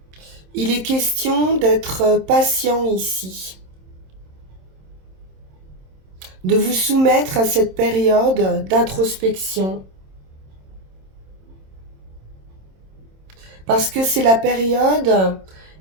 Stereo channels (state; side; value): late; left; 27 ms